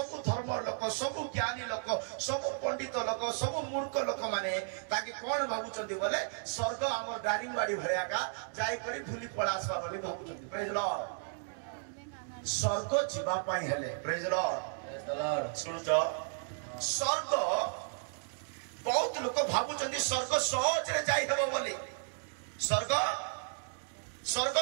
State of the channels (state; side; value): silent; left; digital silence